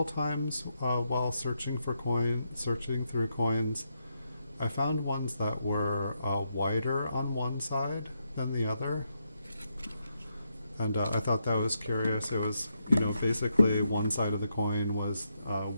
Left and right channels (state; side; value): inverted; both; correlation -0.82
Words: times while searching through coins, I found ones that were wider on one side than the other, and I thought that was curious. It was, basically one side of the coin was